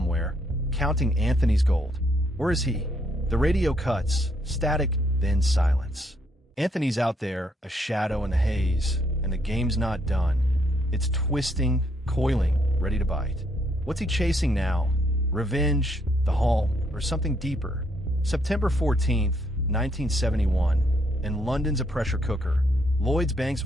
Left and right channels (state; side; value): normal; both; correlation 0.72